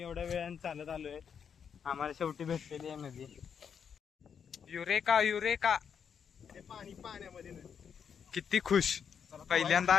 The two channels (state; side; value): quieter; right; 7.3 dB